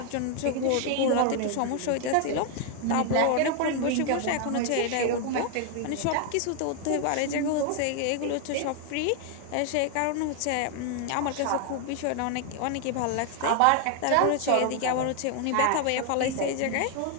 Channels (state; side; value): different; both; correlation 0.00